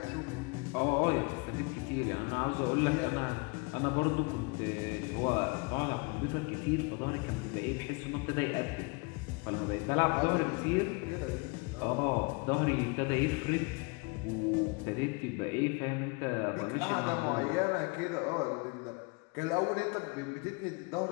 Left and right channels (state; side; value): quieter; right; 30.2 dB